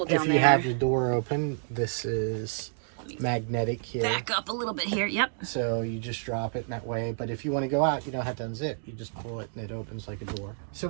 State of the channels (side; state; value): left; silent; digital silence